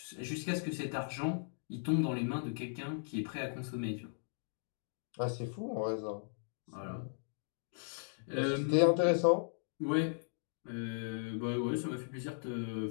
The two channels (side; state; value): right; silent; digital silence